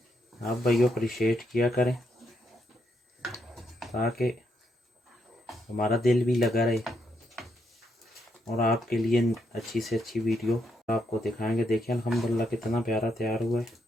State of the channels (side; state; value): both; normal; correlation 0.77